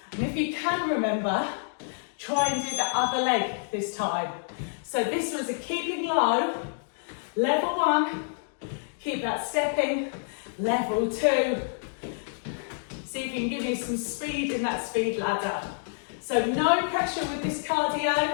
and if you can remember, try and do the other leg this time. So this was a keeping low, level 1, keep that stepping, level 2. See if you can give me some speed in that speed ladder. So no pressure with this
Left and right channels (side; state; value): right; silent; digital silence